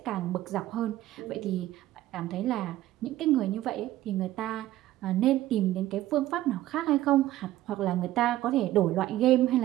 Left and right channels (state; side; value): quieter; left; 14.8 dB